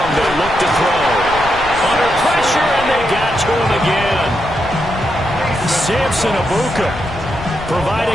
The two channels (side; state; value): left; noise; rumble, 12 dB below the sound